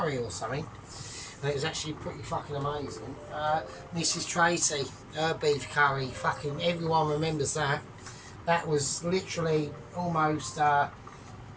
or something. And it was actually pretty fucking amazing. Mrs. Tracy, her beef curry, fucking everyone remembers that. That was literally almost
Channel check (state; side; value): identical; both; correlation 1.00